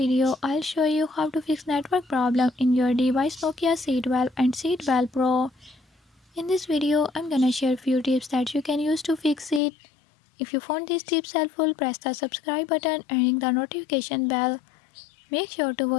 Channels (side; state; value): right; drops out; at 9.6 s